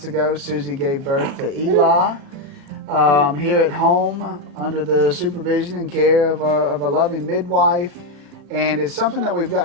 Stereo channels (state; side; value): late; left; 36 ms